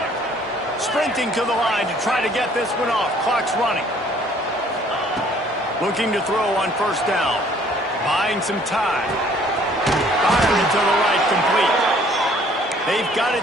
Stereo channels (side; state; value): both; normal; correlation 0.58